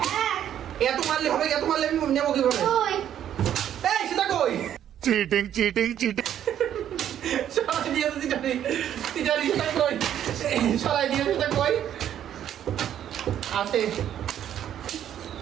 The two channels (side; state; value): left; quieter; 10.4 dB